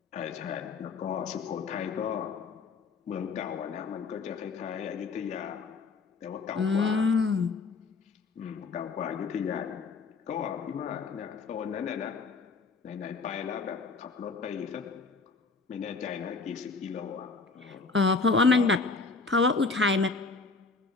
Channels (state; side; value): quieter; right; 4.3 dB